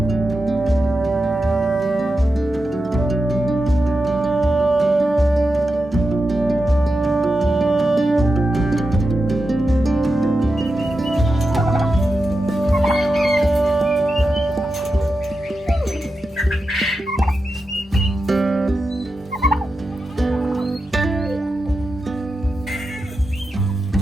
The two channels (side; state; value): both; normal; correlation 0.89